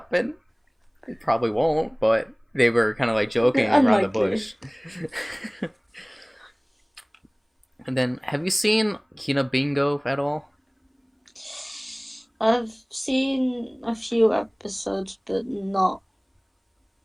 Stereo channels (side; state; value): both; identical; correlation 1.00